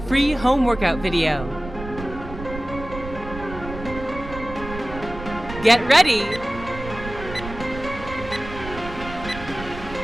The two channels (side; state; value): right; noise; rumble, 11 dB below the sound